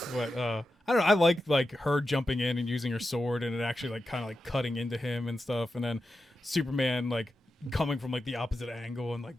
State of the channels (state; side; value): normal; both; correlation 0.90